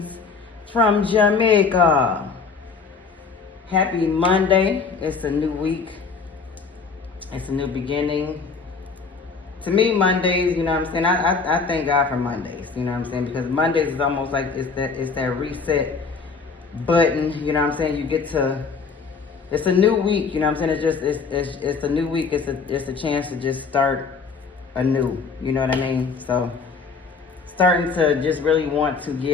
from Jamaica. Happy Monday. It's a new week. It's a new beginning. To me, Mondays, you know what I'm saying? I thank God for Mondays, you know what I'm saying? Because Mondays is almost like it's that reset button, you know what I'm saying? You get to, it's a new week, you know what I'm saying? It's a new week. It's a chance to just start anew, you know what I mean? So starting to just really want to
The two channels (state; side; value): quieter; right; 5.0 dB